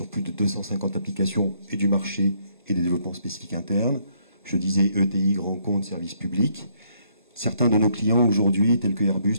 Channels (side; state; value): both; inverted; correlation -0.69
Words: plus de 250 applications et du marché et des développements spécifiques internes. Je disais ETI, grands comptes, services publics. Certains de nos clients aujourd'hui, tels que